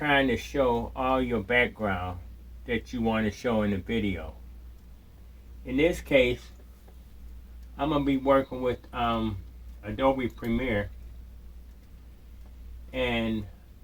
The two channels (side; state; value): both; identical; correlation 1.00